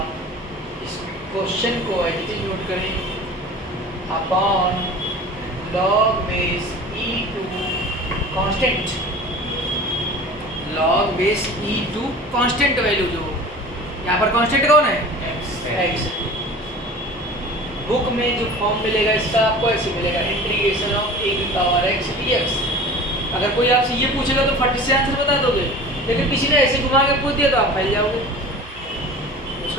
इस क्वेश्चन को एडिटिंग नोट करें, upon log base e2 constant, log base e2 constant value, जो यहाँ पर कांस्टेंट कौन है? x। बुक में जो फॉर्म मिलेगा इसका आपको ऐसे मिलेगा, इंटीग्रेशन ऑफ a की पावर x dx। अगर कोई आपसे ये पूछेगा तो फट से आंसर बता दोगे, लेकिन किसी ने ऐसे घुमा के पूछ दिया तो आप फैल जाओगे।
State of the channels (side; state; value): both; normal; correlation 0.39